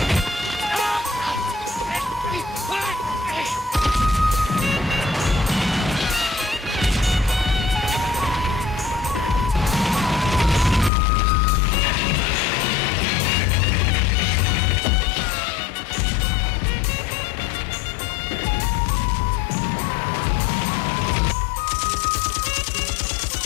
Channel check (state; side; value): drops out; right; at 10.9 s